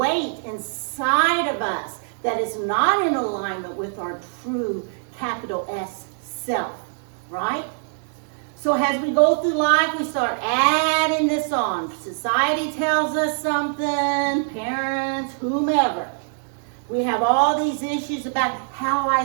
inside of us that is not in alignment with our true capital S self, right? So as we go through life, we start adding this on. Society tells us something, parents, whomever. We have all these issues about how I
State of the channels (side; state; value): left; silent; digital silence